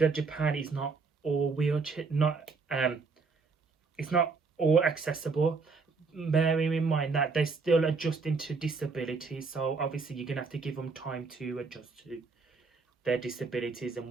Japan is not all wheelchair, it's not all accessible. Bearing in mind that they're still adjusting to disabilities, so obviously you're gonna have to give them time to adjust to their disabilities and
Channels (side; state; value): left; quieter; 4.5 dB